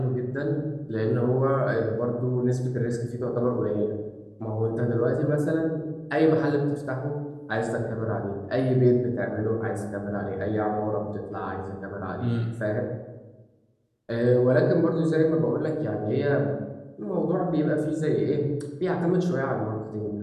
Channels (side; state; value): both; identical; correlation 1.00